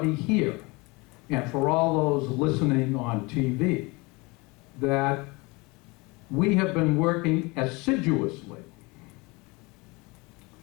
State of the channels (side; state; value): right; quieter; 25.7 dB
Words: here, and for all those listening on TV, that we have been working assiduously.